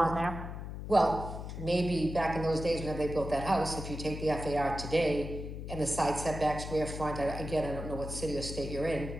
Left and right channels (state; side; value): noise; left; hum, 7 dB below the sound